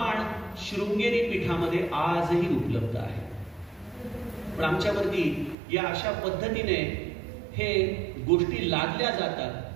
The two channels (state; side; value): drops out; left; at 5.6 s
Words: शृंगेरी पीठामध्ये आजही उपलब्ध आहे. पण आमच्यावरती या अशा पद्धतीने हे गोष्टी लादल्या जातात,